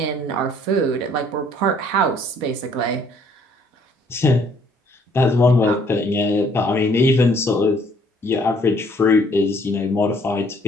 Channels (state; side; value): normal; both; correlation 0.62